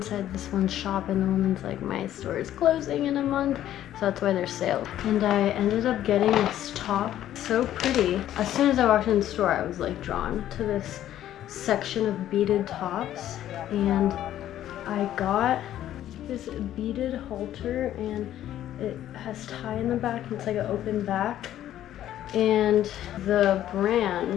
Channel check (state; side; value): quieter; right; 12.2 dB